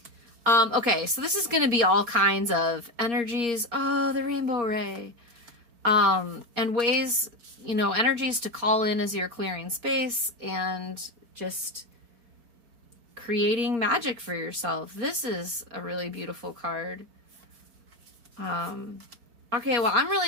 Okay, so this is going to be all kinds of energies. Oh, the rainbow ray. And ways, you know, energies to call in as you're clearing space and just creating magic for yourself. This is a really beautiful card. Okay, well, I'm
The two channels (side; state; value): left; late; 4.3 ms